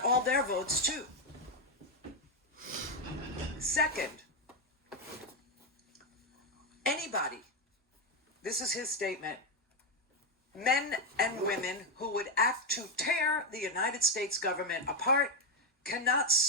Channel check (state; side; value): normal; both; correlation 0.06